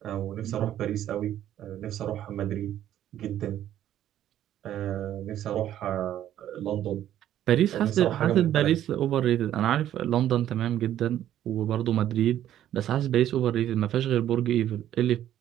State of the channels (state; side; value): quieter; left; 11.7 dB